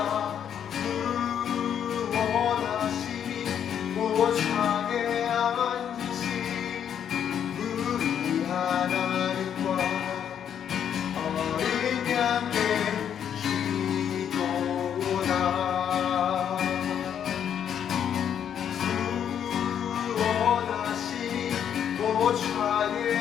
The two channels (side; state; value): right; quieter; 8.9 dB